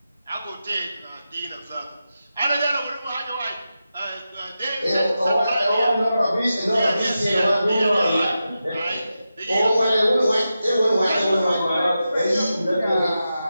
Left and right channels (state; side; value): inverted; both; correlation -0.91